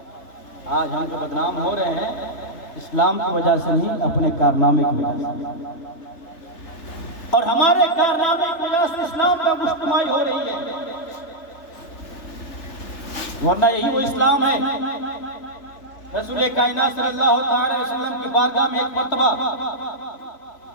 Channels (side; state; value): right; late; 3.3 ms